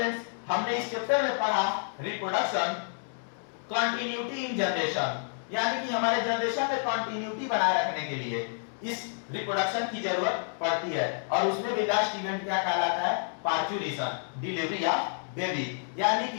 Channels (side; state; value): right; silent; digital silence